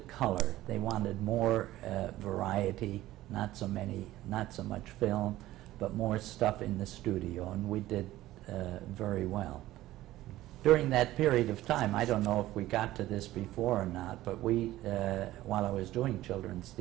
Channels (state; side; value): quieter; left; 15.6 dB